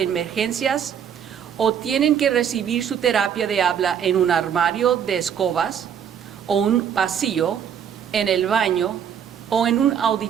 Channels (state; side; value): quieter; left; 8.4 dB